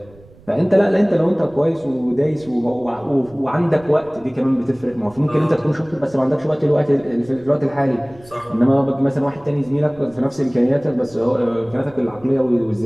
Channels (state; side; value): noise; right; rumble, 25 dB below the sound